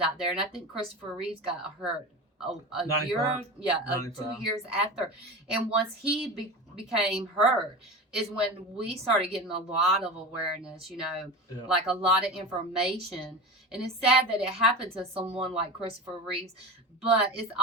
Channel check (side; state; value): both; normal; correlation 0.29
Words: out there, and I think Christopher Reeves got hurt a year, 2 years after. And once he became hurt, is when we started getting a lot of awareness, you know, like a lot of information. And it's sad that it happened to someone like Christopher Reeves, but it's